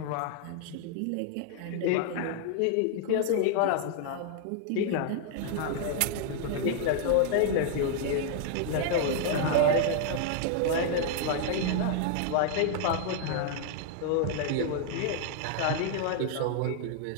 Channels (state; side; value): different; both; correlation 0.00